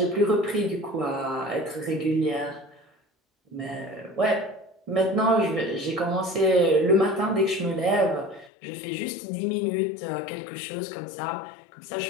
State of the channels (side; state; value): right; drops out; at 8.5 s